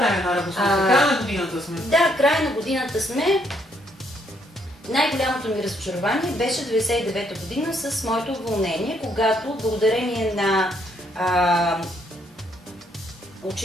една равносметка. Края на годината сме. Да, края на годината сме. Най-голямото ми разочарование беше 99-та година с моето уволнение, когато благодарение на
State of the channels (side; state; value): both; normal; correlation 0.71